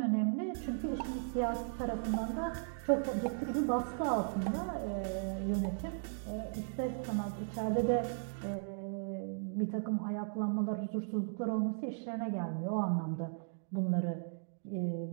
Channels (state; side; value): silent; left; digital silence